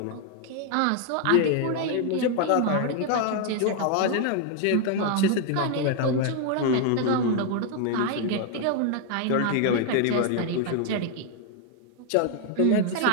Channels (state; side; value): different; both; correlation 0.00